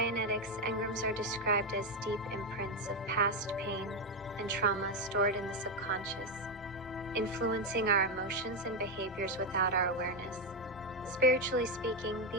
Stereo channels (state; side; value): normal; both; correlation 0.07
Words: engrams are described as deep imprints of past pain and trauma stored in the subconscious, influencing our emotions and behaviors without our awareness. Spiritually speaking,